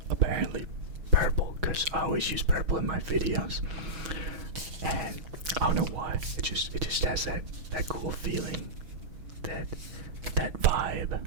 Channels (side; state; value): left; late; 6.2 ms